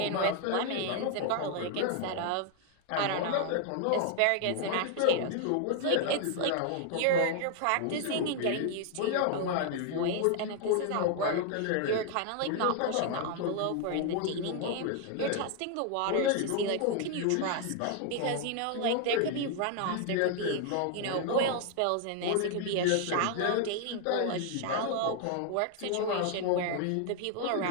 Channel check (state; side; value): different; both; correlation 0.00